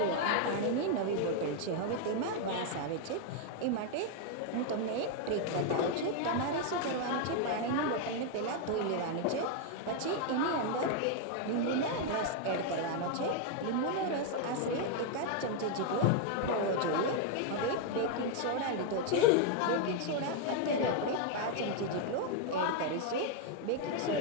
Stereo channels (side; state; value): both; different; correlation 0.00